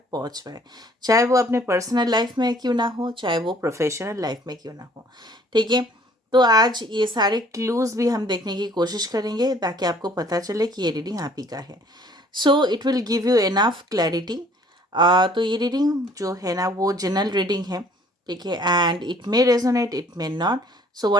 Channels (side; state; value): both; normal; correlation 0.57